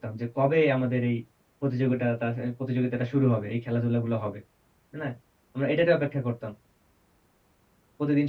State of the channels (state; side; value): identical; both; correlation 1.00